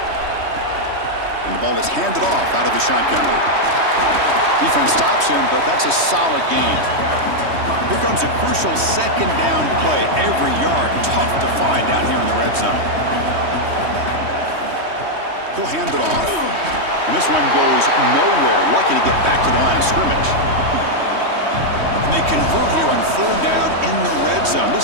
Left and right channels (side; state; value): left; late; 3.2 ms